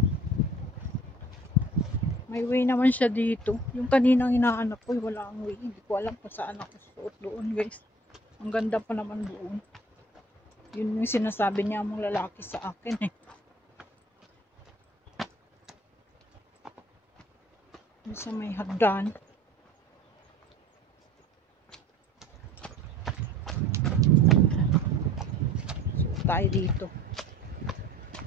May way naman siya dito. Yung kaninang hinahanap ko, wala ang way. Hindi ko alam kung saan ako suot doon guys. Ang ganda pa naman doon. Yun yung sinasabi niya mong lalaki sa akin eh. Sa may hagdan. So, tayo dito.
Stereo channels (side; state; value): both; normal; correlation 0.50